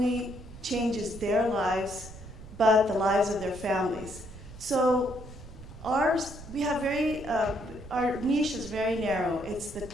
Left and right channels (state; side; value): noise; right; rumble, 15 dB below the sound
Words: changes their lives, but the lives of their families. So we have our niche is very narrow. It's the